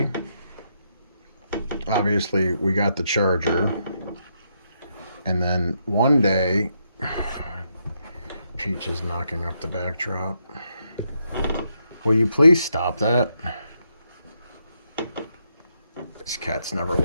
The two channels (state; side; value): inverted; both; correlation -0.79